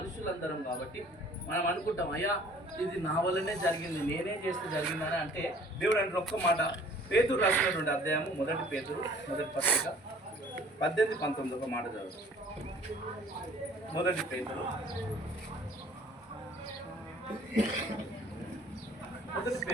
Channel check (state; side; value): normal; both; correlation 0.53